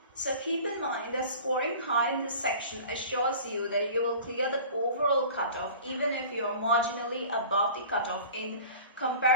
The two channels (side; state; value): both; inverted; correlation -0.40